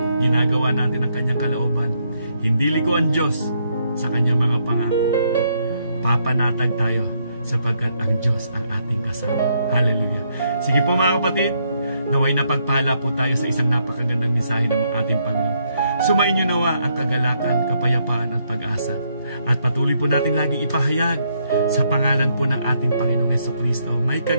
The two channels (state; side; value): inverted; both; correlation -0.74